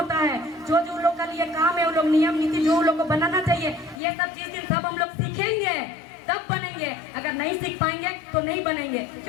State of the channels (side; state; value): right; drops out; at 4.0 s